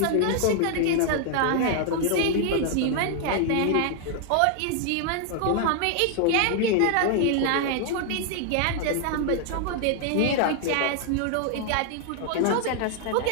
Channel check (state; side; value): different; both; correlation 0.00